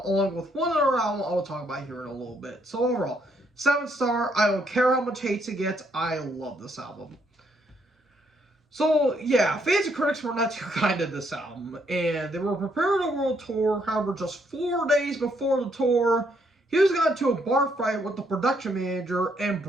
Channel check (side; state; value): both; normal; correlation 0.72